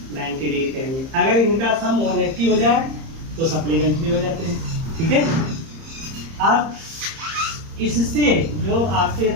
90 डिग्री कहेंगे। अगर इनका सम 180 हो जाए तो सप्लीमेंट्री हो जाते हैं। ठीक है, अब इससे जो आपके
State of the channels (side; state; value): left; late; 30 ms